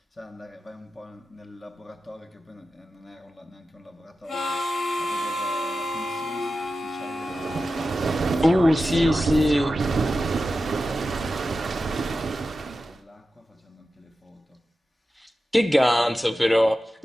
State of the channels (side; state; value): both; normal; correlation 0.92